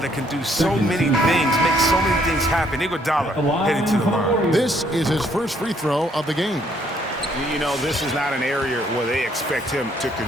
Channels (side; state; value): both; normal; correlation 0.67